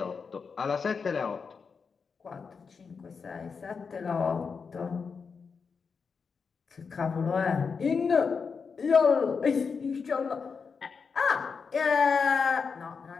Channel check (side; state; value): right; quieter; 5.5 dB